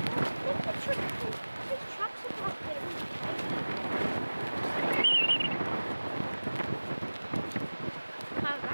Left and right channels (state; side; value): inverted; both; correlation -1.00